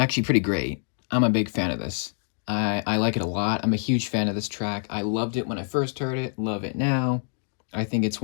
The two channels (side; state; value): right; silent; digital silence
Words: pretty great. I'm a big fan of this. I like it a lot. I'm a huge fan of this track. I loved it when I first heard it, love it now. I think it's